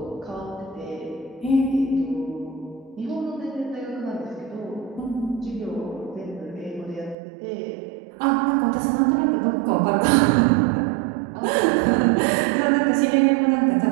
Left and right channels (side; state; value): left; drops out; at 7.2 s